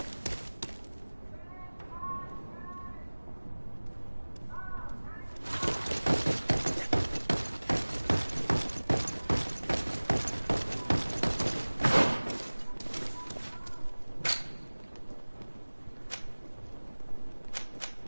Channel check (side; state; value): both; inverted; correlation -1.00